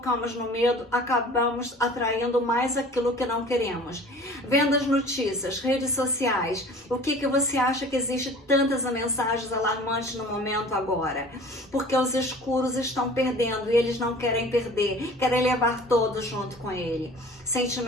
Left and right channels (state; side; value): normal; both; correlation 0.45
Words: no medo, acabamos atraindo mais aquilo que não queremos. Vendo as notícias, redes sociais, o que você acha que existe tantas mensagens alarmantes no momento agora? Porque os escuros estão perdendo e eles não querem perder, querem levar todos junto com ele.